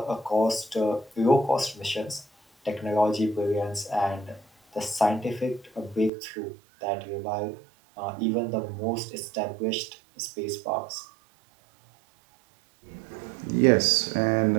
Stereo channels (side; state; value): left; drops out; at 6.1 s